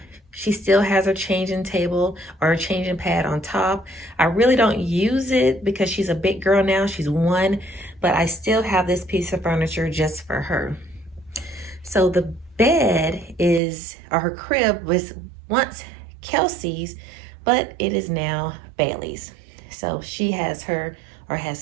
She still has her changing table or her changing pad on top. I really don't use it because she's a big girl now, she's 1, but I still have this piece of furniture just for her. So the bed is, or her crib was once Kelsey's, but it is now Bailey's. So she has her, or has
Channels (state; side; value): drops out; left; at 13.6 s